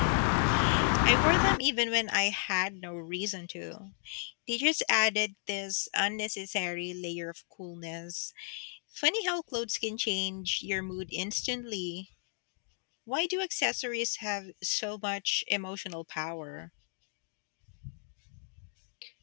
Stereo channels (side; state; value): right; silent; digital silence